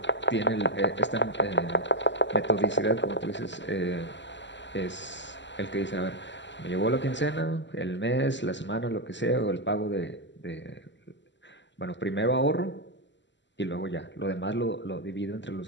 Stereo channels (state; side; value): late; right; 0.53 ms